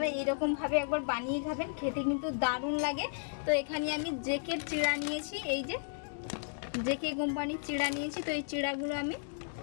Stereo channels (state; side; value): silent; right; digital silence